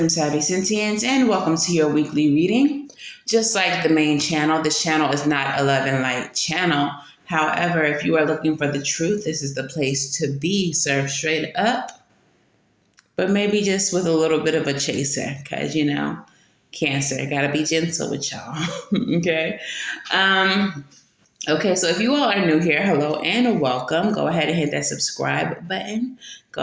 Savy and welcome to your weekly reading. Just like the main channel, this channel is not a love and light channel. However, if you are looking for the truth, this is the place to be, served straight up, but maybe just with a little bit of a chaser, because, Cancer, gotta be gentle with y'all, okay? Okay, so if you all are new here, hello and welcome. Go ahead and hit that subscribe button.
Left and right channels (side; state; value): both; identical; correlation 1.00